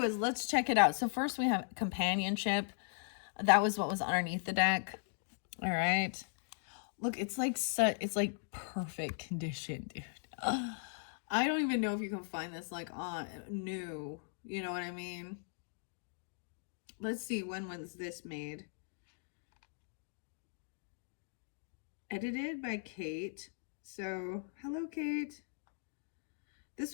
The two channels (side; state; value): right; silent; digital silence